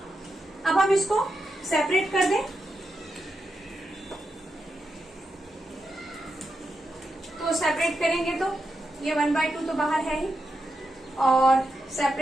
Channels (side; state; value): both; normal; correlation 0.86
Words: अब हम इसको सेपरेट कर दें, तो सेपरेट करेंगे तो ये 1/2 तो बाहर है ही, और